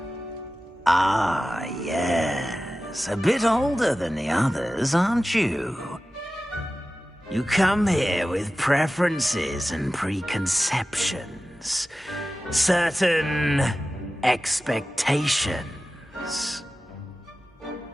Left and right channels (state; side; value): normal; both; correlation 0.95